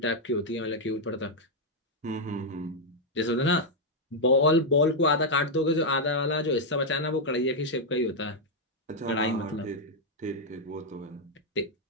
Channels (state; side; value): normal; both; correlation -0.02